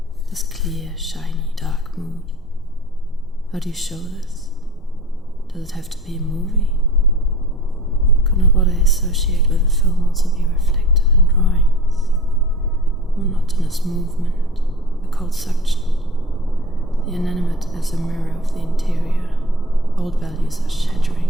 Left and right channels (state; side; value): normal; both; correlation 0.37